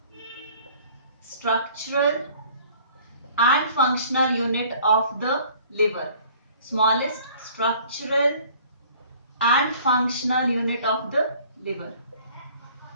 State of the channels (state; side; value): inverted; both; correlation -0.53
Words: structural and functional unit of the liver. Smallest structural and functional unit of the liver.